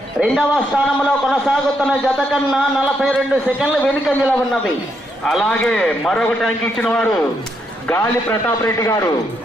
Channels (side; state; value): both; normal; correlation 0.78